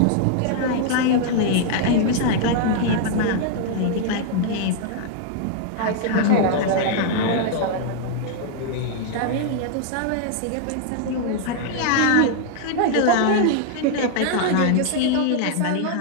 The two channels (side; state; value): both; different; correlation -0.01